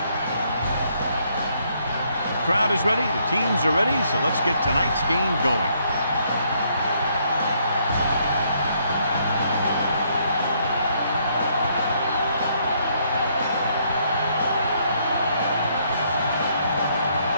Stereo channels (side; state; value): both; inverted; correlation -0.70